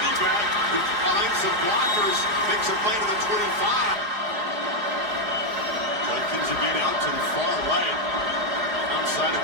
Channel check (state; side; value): late; left; 4.8 ms